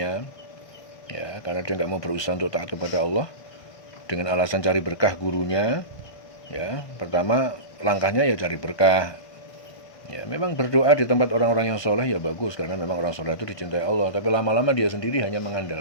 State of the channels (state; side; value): late; right; 1.5 ms